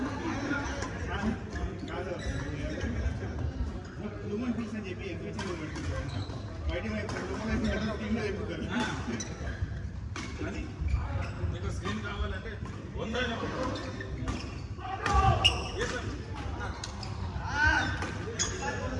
హ్యూమన్ ఫీల్స్ అని చెప్పి ఎగ్జిబిషన్ బయట కానీ మీకు స్క్రీన్ కావాలంటే 100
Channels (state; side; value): identical; both; correlation 1.00